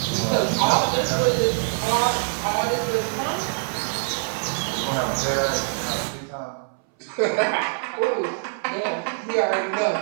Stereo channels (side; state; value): left; silent; 60 dB below the other